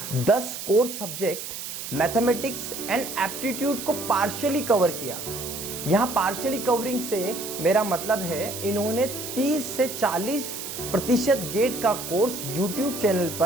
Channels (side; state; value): right; noise; hiss, 8 dB below the sound